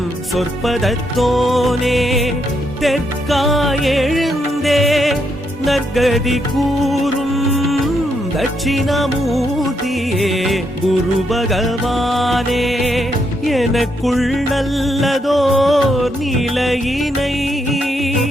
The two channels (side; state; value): both; normal; correlation 0.78